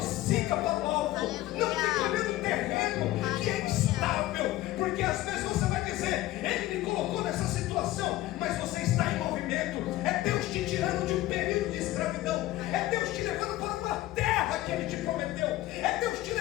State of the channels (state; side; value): quieter; right; 16.2 dB